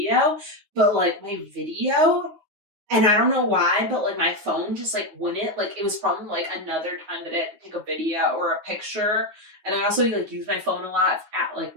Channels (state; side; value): late; left; 9.6 ms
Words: but like my video And I don't know why, but like my phone just like wouldn't, like it was from like another time that I had to take a video or a picture. And I also like use my phone a lot at like